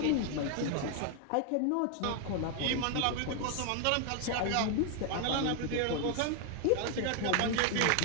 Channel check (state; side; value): different; both; correlation 0.00